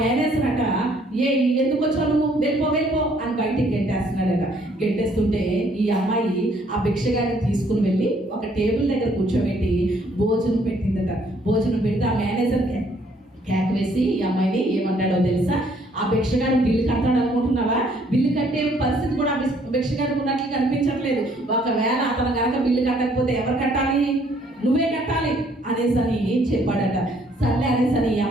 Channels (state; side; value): normal; both; correlation 0.64